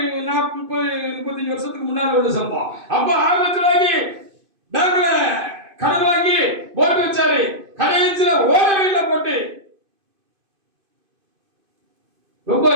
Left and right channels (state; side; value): late; left; 2.5 ms